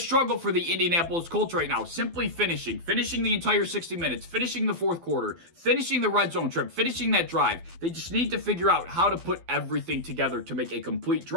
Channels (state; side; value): late; left; 12 ms